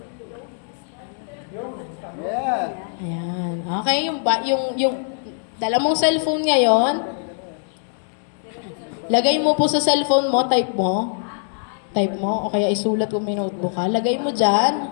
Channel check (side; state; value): right; silent; 64 dB below the other